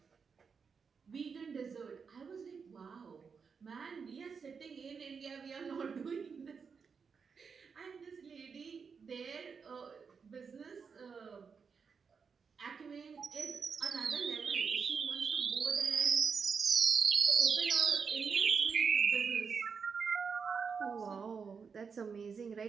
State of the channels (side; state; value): left; quieter; 5.8 dB